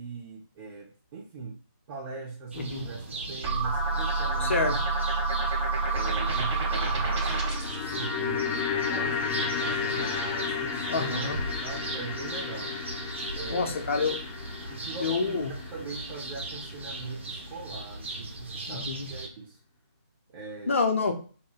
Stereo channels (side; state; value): both; inverted; correlation -0.38